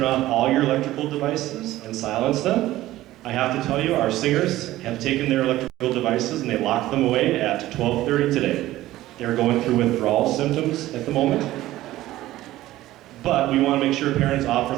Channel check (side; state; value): left; quieter; 15.6 dB